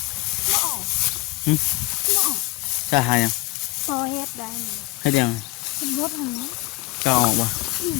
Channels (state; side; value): quieter; right; 20.3 dB